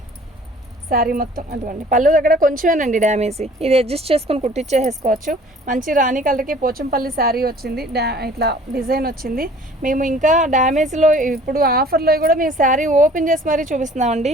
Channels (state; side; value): normal; both; correlation 0.51